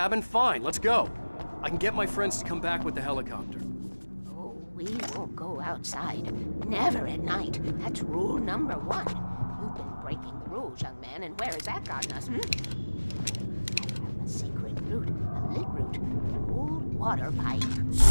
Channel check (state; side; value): inverted; both; correlation -1.00